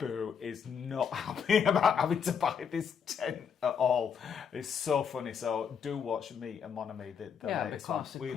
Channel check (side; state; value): right; quieter; 7.1 dB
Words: is not happy about having to buy this tent at all. It's so funny. So do watch Me and Mon Ami, the latest one. We